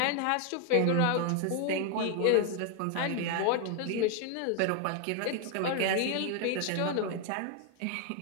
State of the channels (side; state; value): both; different; correlation 0.01